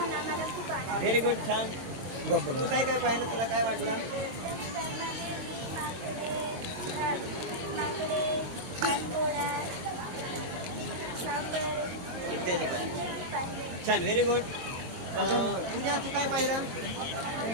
आम्हाला खूप आनंद. व्हेरी गुड, छान. तू काय काय पाहिलं, तुला काय वाटलं? माकडे, पानघोडा, सापर इत्यादी काय पाहिले. छान, व्हेरी गुड. पूजा, तू काय पाहिलं?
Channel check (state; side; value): late; left; 22 ms